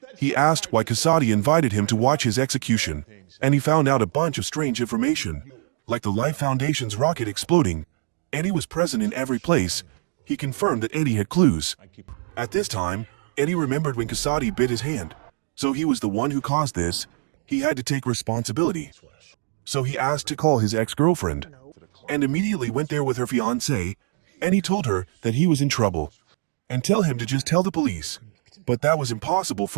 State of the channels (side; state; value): left; silent; digital silence